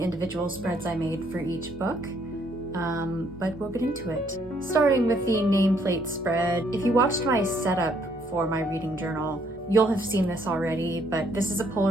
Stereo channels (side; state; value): both; normal; correlation 0.68